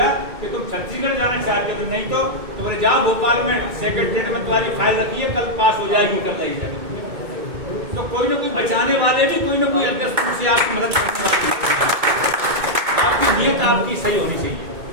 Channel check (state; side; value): late; left; 2.2 ms